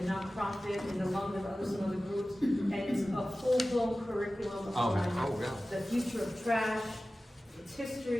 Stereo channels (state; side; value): normal; both; correlation 0.96